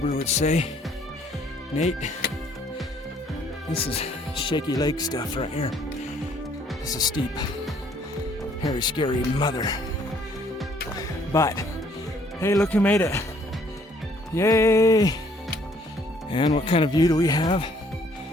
would say, Nate, this is shaky leg stuff right here. This is steep, hairy, scary mother. But, hey, look who made it. Yay! And what kind of view do we have?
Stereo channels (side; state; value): both; normal; correlation 0.63